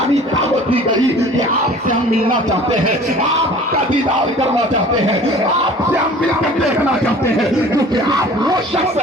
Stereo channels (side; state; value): both; normal; correlation 0.46